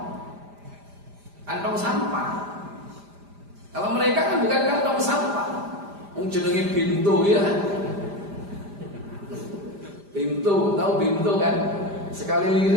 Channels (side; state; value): left; late; 5.0 ms